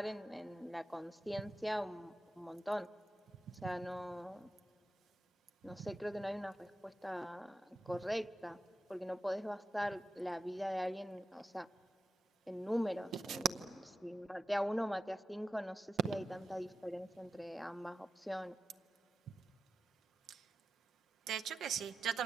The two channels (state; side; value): normal; both; correlation 0.90